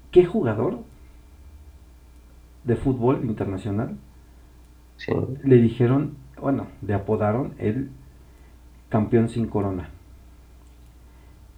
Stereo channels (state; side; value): identical; both; correlation 1.00